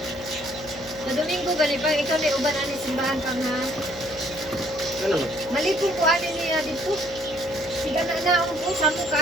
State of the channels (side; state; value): left; noise; hum, 18 dB below the sound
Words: Sa Domingo, ganito pa, ikaw na uban ani simbahan ka nga. Ano naman? Malipong ko ano niya dito. Siga na naon po, samo